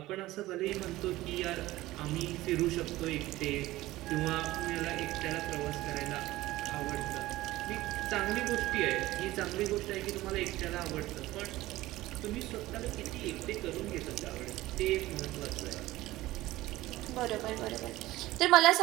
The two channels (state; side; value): quieter; left; 17.3 dB